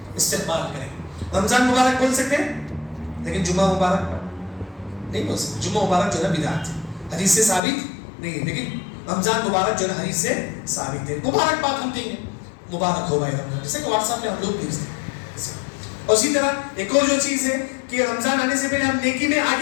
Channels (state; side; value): drops out; right; at 7.6 s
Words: استقبال کریں گے. رمضان مبارک بول سکتے ہیں لیکن جمعہ مبارک نہیں بول سکتے. جمعہ مبارک جو ہے بدعت ہے, حدیث سے ثابت نہیں ہے, لیکن رمضان مبارک جو ہے حدیث سے ثابت ہے. مبارک بات ہم دیں گے, مبارک ہو بھائی رمضان, جیسے کہ واٹس ایپ پہ ہم لوگ بھیجتے ہیں. اور اسی طرح ایک اور جو چیز ہے کہ رمضان آنے سے پہلے ہم نیکی میں